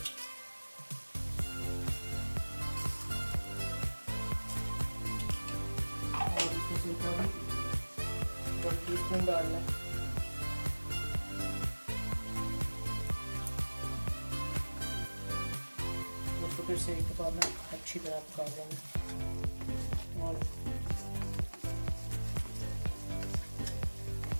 सिरका भी 1 टीस्पून डालना है। उसको फिर से एक दफ़ा अच्छी तरह पका लेंगे। और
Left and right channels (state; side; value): inverted; both; correlation -1.00